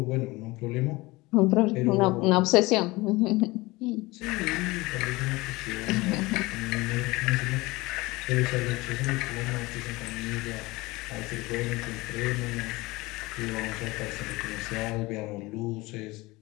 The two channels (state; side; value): quieter; right; 21.7 dB